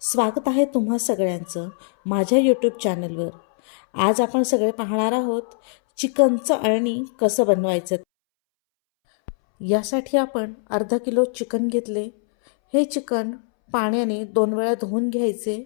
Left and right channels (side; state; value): right; silent; 64 dB below the other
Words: स्वागत आहे तुम्हा सगळ्यांचं माझ्या यूट्यूब चॅनलवर. आज आपण सगळे पाहणार आहोत चिकनचं अळणी कसं बनवायचं. यासाठी आपण अर्धा किलो चिकन घेतले. हे चिकन पाण्याने 2 वेळा धुवून घ्यायचे.